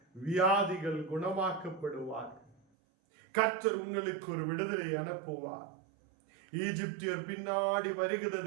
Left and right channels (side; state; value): left; drops out; at 2.6 s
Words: வியாதிகள் குணமாக்கப்படுவார்கள். கர்த்தர் உங்களுக்கு ஒரு விடுதலை அனுப்புவார். ஈஜிப்தியர் பின்னாடி